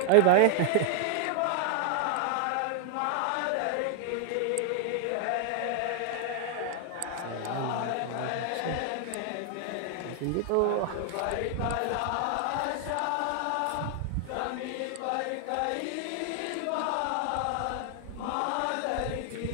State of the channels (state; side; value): different; both; correlation 0.00